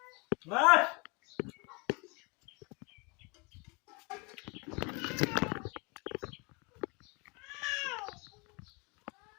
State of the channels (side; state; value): right; quieter; 29.7 dB